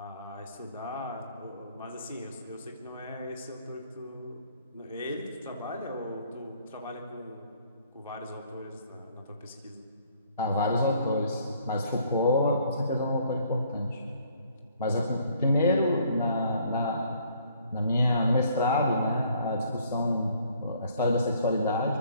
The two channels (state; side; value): inverted; both; correlation -0.62